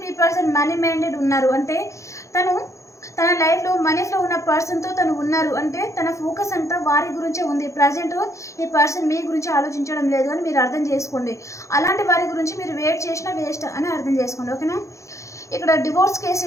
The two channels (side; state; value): right; late; 0.15 ms